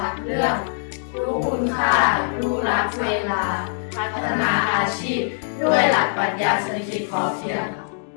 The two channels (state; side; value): silent; right; digital silence